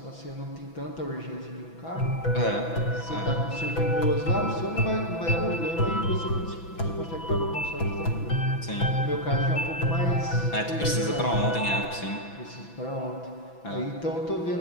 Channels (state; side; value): late; right; 6.0 ms